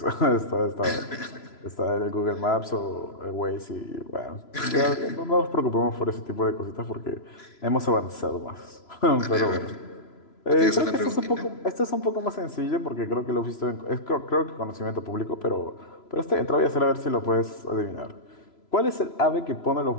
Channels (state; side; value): late; right; 3.0 ms